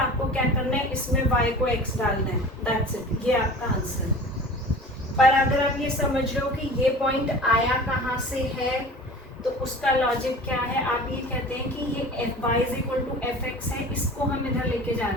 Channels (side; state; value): both; normal; correlation 0.40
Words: क्या करना है, इसमें y को x डालना है, दैट्स इट, ये आपका आंसर है। पर अगर आप ये समझ रहे हो कि ये पॉइंट आया कहाँ से है, तो उसका लॉजिक क्या है, आप ये कहते हैं कि ये y is equal to F X है, इसको हम इधर लेके जा